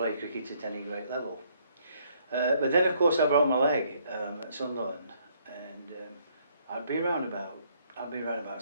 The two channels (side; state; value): both; inverted; correlation -0.67